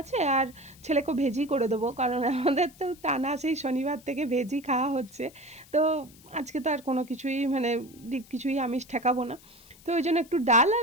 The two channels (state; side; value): noise; left; hiss, 24 dB below the sound